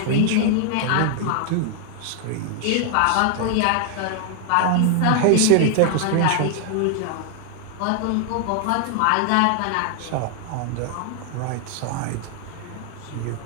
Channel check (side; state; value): both; different; correlation 0.00